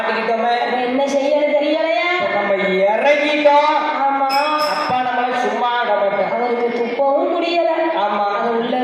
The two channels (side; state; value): both; identical; correlation 1.00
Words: அப்ப என்ன செய்யணும் தெரியலையா? நம்ம இறங்கிட்டோம். ஆமா, அப்பா நம்மள சும்மா விடமாட்டோம். அவருக்கு துப்பவும் முடியல, ஆமா, அதை உள்ள